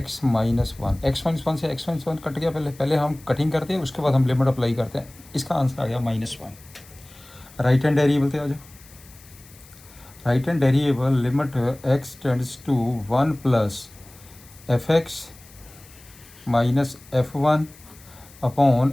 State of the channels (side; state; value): left; noise; hiss, 23 dB below the sound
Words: माइनस 1। एक्स माइनस 1 से x माइनस 1 कट गया, पहले हम कटिंग करते हैं, उसके बाद हम लिमिट अप्लाई करते हैं, इसका आंसर आ गया -1। राइट हैंड वेरिएबल थे आ जाओ, right hand variable limit x tends to 1 plus f x minus f1 upon